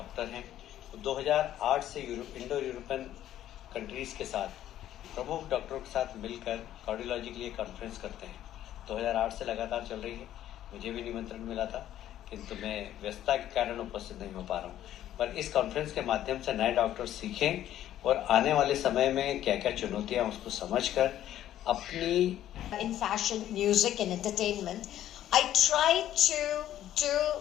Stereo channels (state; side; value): quieter; right; 12.2 dB